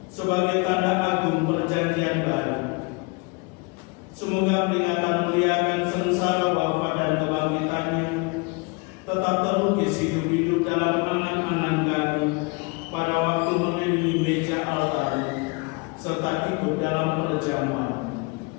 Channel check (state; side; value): quieter; right; 29.5 dB